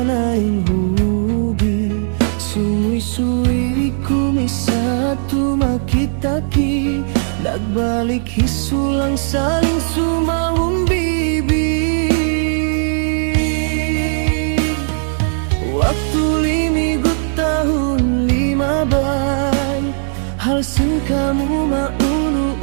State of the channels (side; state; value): left; silent; digital silence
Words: hubi, suwi-suwi kumisatu makitaki, nagbalik hisulang saling sumawang bibi. Waktu limigut tahun 15, halsen kamu